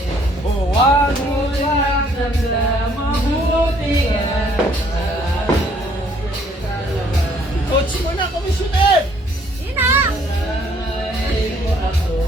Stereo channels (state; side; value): normal; both; correlation 0.63